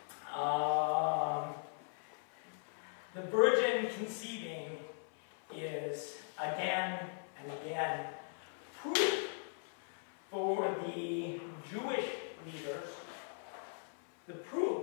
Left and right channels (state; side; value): silent; right; 52 dB below the other